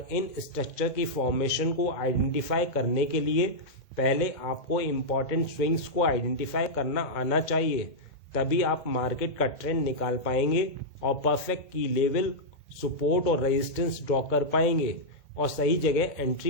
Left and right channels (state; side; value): late; right; 2.1 ms